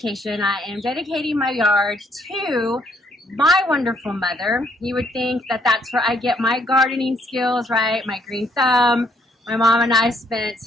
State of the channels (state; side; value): normal; both; correlation 0.68